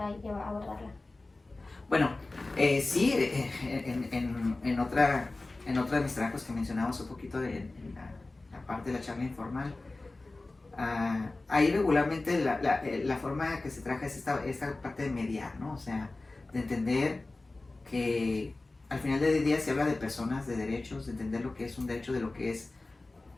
abordarla. Bueno, sí, en otra de mis trabajos que mencionamos un poquito en la parte de la charla informal, ahí regularmente la forma que se trabaja es esta parte de mediar, ¿no? O sea, de entender que al final del día se habla de personas, de derechos, de entender lo que es un derecho, de lo que es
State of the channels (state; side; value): quieter; right; 3.1 dB